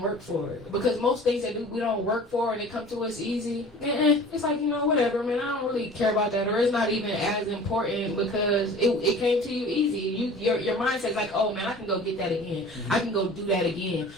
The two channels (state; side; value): normal; both; correlation 0.43